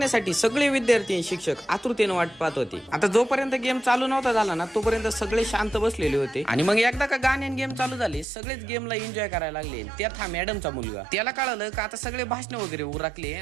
सगळे विद्यार्थी शिक्षक आतुरतेने वाट पाहत होते. आता जोपर्यंत गेम चालू नव्हता झाला ना तोपर्यंत सगळे शांत बसलेले होते आणि मग एकदा का गाणे गेम चालू झाले सगळेच गेमला एन्जॉय करायला लागले. त्यात हा मॅडमचा मुलगा, त्याला कळलं का आता सगळे भाषण वगैरे उरकले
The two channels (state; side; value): drops out; left; at 8.2 s